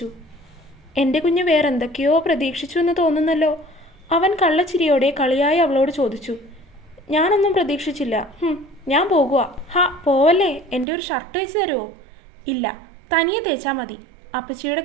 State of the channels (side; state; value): left; drops out; at 10.9 s